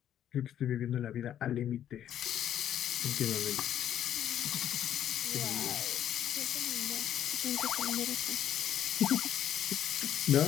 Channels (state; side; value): quieter; right; 10.7 dB